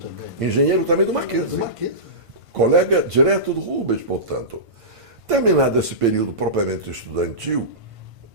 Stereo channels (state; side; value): late; left; 1.5 ms